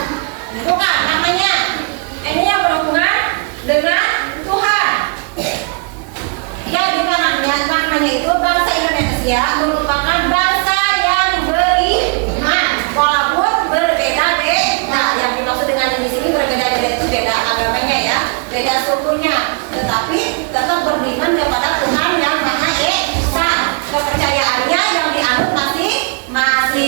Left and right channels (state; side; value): quieter; left; 36.6 dB